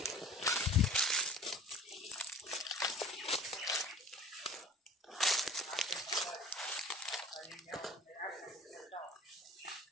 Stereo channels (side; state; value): both; normal; correlation 0.43